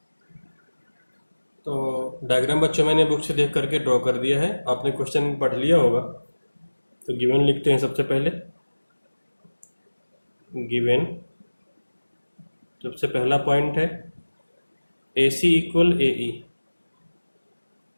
तो डायग्राम बच्चों मैंने बुक से देख करके ड्रॉ कर दिया है, आपने क्वेश्चन पढ़ लिया होगा। तो गिवन लिखते हैं सबसे पहले। गिवन सबसे पहला पॉइंट है AC इक्वल AE,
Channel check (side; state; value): both; inverted; correlation -1.00